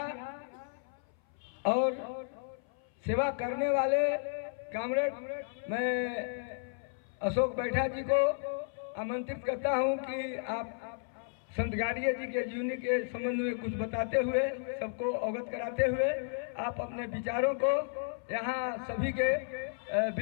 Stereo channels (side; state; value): right; silent; 55 dB below the other